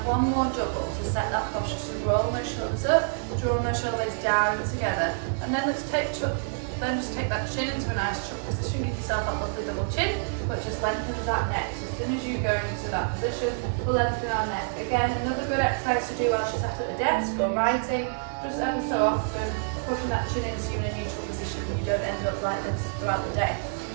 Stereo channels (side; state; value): left; silent; digital silence